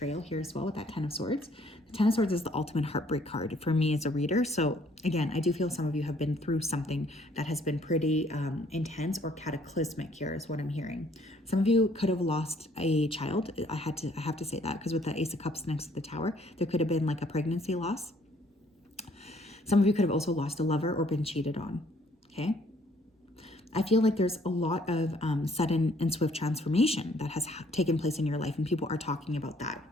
here as well with that 10 of Swords. The 10 of Swords is the ultimate heartbreak card for me as a reader. So again, I do feel some of you have been through something that has been pretty intense or cataclysmic here is what I'm hearing. Some of you could have lost a child. I have to say that, because with the Ace of Cups next to the Tower, there could have been like a pregnancy loss. Some of you could have also lost a lover or been cheated on. Okay. I feel like there's a lot of sudden and swift transformation that has taken place in your life, and people are talking about that.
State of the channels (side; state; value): both; normal; correlation 0.63